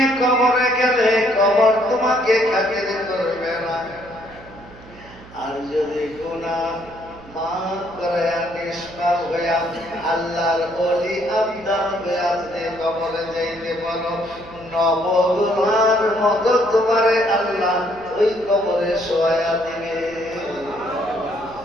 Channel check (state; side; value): noise; right; hum, 20 dB below the sound